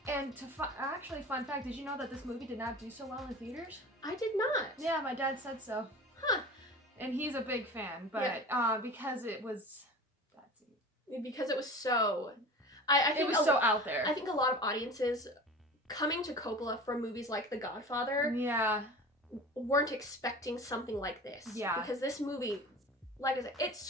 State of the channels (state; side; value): normal; both; correlation 0.36